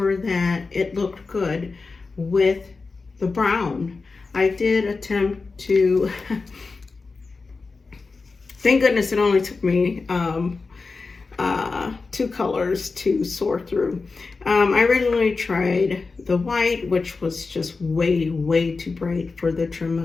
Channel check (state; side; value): quieter; right; 4.2 dB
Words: that it looked good with the brown. I did attempt to, thank goodness it only took me 2 colors to sort through. I originally tried the white, which was just way too bright for the trim